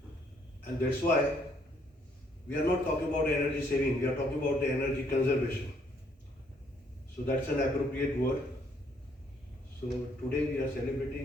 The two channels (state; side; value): normal; both; correlation 0.68